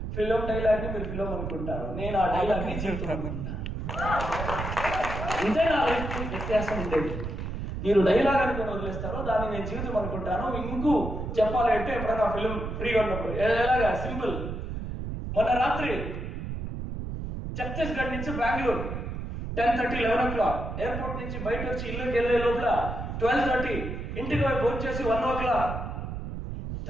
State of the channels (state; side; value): noise; right; rumble, 5 dB below the sound